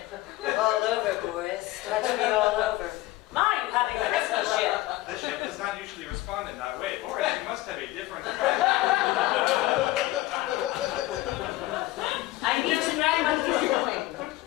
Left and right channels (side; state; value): right; quieter; 17.7 dB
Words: All over, boys. Touch me all over. Mine having a rescue ship. The ship does not usually respond in that way. Or you must have a different I need to know what you're doing.